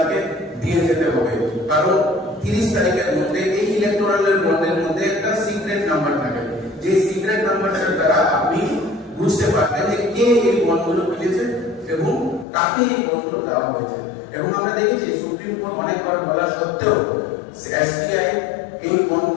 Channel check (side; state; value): right; drops out; at 12.5 s